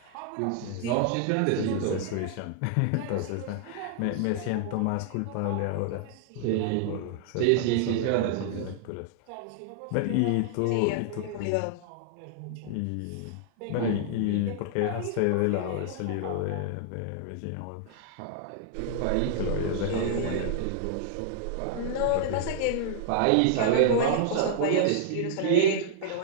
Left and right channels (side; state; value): both; different; correlation -0.01